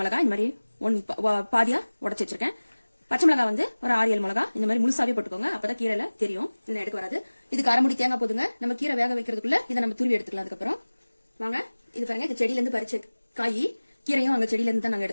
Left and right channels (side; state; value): both; inverted; correlation -1.00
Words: இந்த மாதிரி பாதியா உடச்சி வச்சிருக்கேன். பச்சை மிளகா வந்து ஒரு 6-7 மிளகா இந்த மாதிரி முழுசாவே போட்டுக்கோங்க, அப்பதான் கீரையில தெரியும், இல்லை எடுக்க வராது. இதுக்கு அரை முடி தேங்காய் போதுங்க. நம்ம கீரை வேக வைக்கிறதுக்குள்ள இதை நம்ம துருவி எடுத்துக்கலாம். அதுக்கப்புறம் வாங்க, இது பாருங்க, இது செடியில இருந்து பறிச்ச காய். கீரையும் அங்க செடியில இருந்து தான் நாங்க